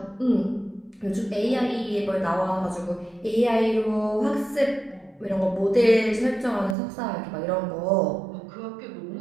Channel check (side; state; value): left; drops out; at 6.8 s